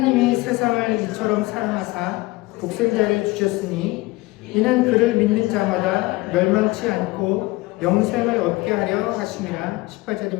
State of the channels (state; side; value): quieter; right; 21.2 dB